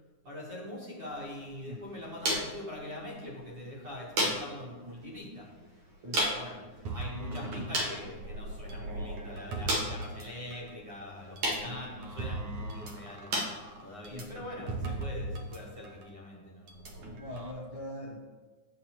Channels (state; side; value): late; left; 9.7 ms